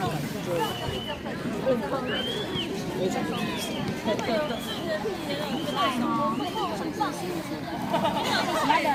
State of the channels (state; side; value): identical; both; correlation 1.00